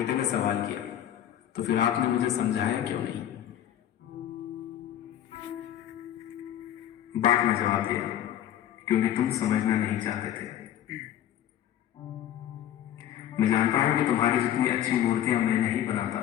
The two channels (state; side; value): quieter; right; 11.3 dB